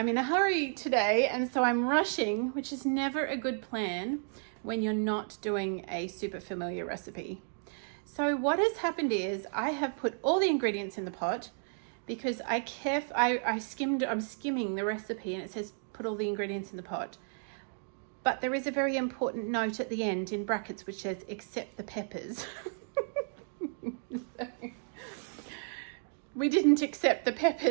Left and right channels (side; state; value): left; silent; digital silence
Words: in a hurry today, and so I'm rushing, which is never a good plan when you're not doing a super familiar recipe. So what has happened is I have put all the ingredients in the pot because I'm skimming the recipe and it says put all the ingredients in the pot. But there is a very important note at the end in brackets which says except the peppers. So, we didn't accept the